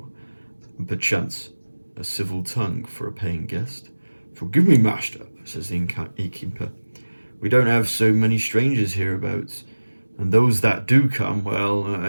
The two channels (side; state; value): both; inverted; correlation -1.00